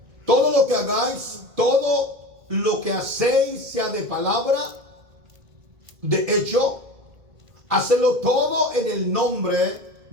Todo lo que hagáis, todo lo que hacéis, sea de palabra, de hecho, hacedlo todo en el nombre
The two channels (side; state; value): left; late; 1.8 ms